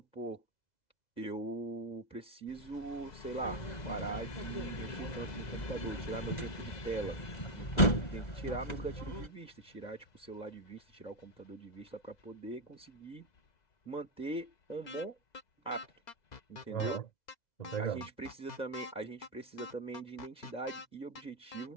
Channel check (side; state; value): right; late; 2.0 ms